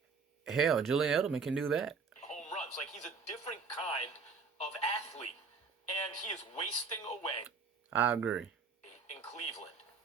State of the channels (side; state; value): left; quieter; 5.1 dB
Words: Hell, Julian Edelman can do that. home runs. Like, he's a different kind of athlete, and he is wasting away I agree. in Cleveland